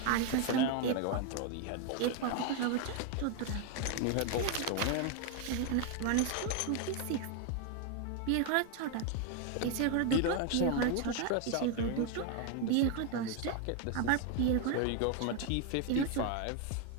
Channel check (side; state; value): both; different; correlation 0.01